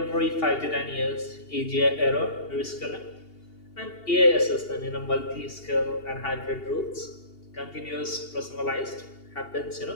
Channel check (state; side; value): late; right; 2.8 ms